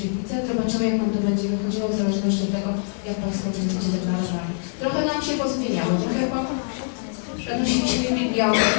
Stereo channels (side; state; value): right; silent; digital silence